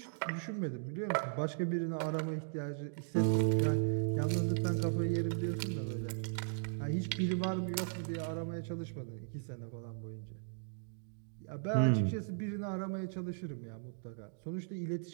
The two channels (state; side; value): silent; left; digital silence